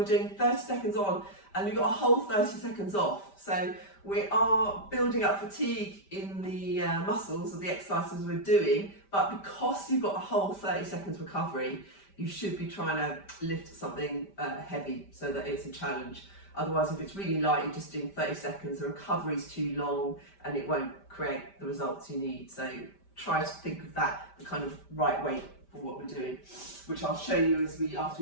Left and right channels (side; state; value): right; late; 5.1 ms